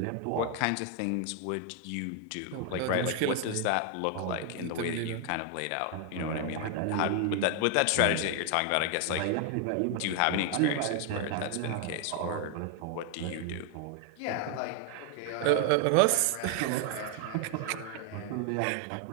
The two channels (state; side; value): different; both; correlation 0.00